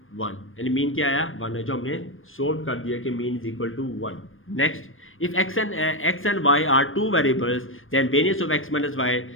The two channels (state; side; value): late; right; 0.59 ms